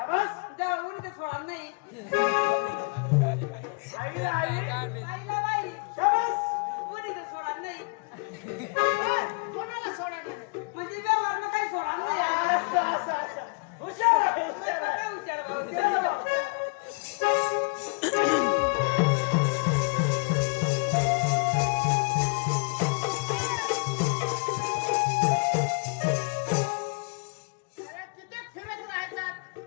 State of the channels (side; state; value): right; quieter; 34.4 dB